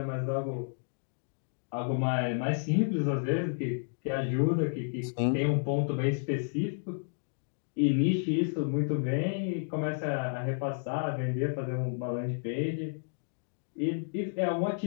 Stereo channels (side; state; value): right; silent; digital silence